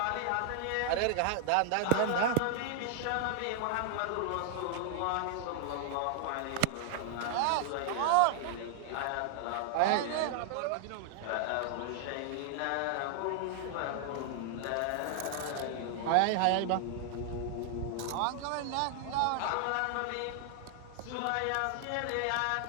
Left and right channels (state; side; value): different; both; correlation 0.00